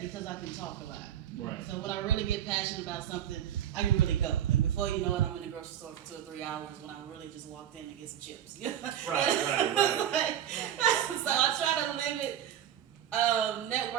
because I can talk a lot. Right. So when I really get passionate about something, I can really go. And before you know it, I'm in the grocery store for 2 or 3 hours when I really just walked in to get some chips. Right. So I try to limit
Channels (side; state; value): left; quieter; 10.4 dB